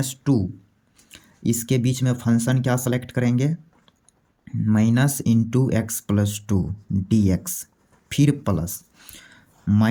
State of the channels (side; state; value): both; identical; correlation 1.00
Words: इसके बीच में फंक्शन क्या सेलेक्ट करेंगे? -(x+2) dx, फिर प्लस